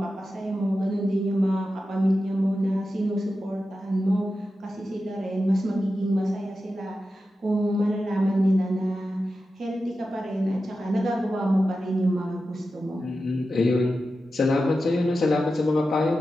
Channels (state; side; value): normal; both; correlation 0.91